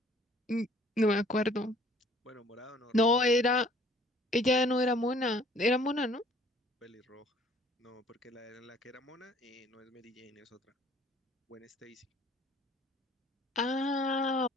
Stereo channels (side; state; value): both; normal; correlation 0.56